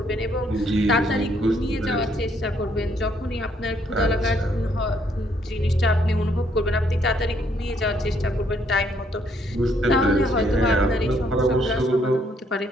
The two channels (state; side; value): normal; both; correlation 0.69